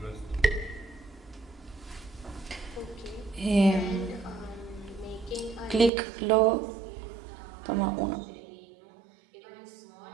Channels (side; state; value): left; drops out; at 5.9 s